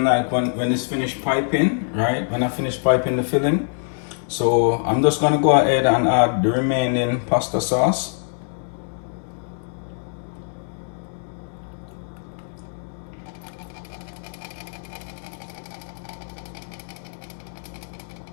like when it's finished piping, right? When I finish piping the filling. So I'm just gonna go ahead and add the remaining pasta sauce.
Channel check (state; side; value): silent; right; digital silence